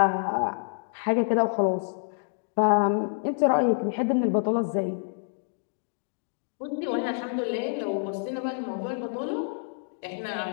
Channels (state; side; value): silent; right; digital silence